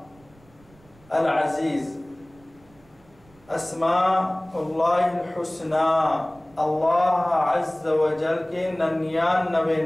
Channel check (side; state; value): right; noise; rumble, 29 dB below the sound